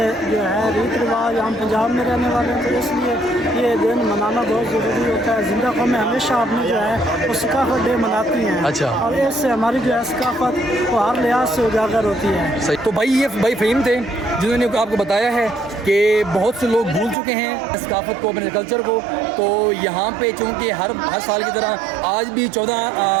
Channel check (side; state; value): left; drops out; at 17.2 s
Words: जो है रीत रिवाज, हम पंजाब में रहने वाले हैं, तो इसलिए ये दिन मनाना बहुत ज़रूरी होता है। जिंदा कौमें हमेशा अपनी जो है वो सकाफत डे मनाती हैं। अच्छा। और इससे हमारी जो है सकाफत वो हर लिहाज से उजागर होती है। सही। तो भाई ये भाई फ़हीम थे जिन्होंने आपको बताया है कि बहुत से लोग भूल चुके हैं सकाफत को, अपने कल्चर को। तो यहाँ पे चूँकि हर साल की तरह आज भी 14